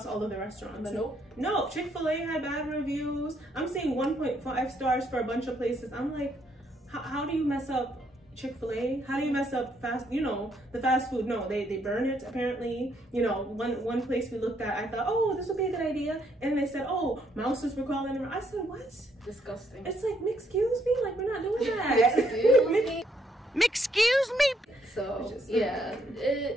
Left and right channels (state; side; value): normal; both; correlation 0.72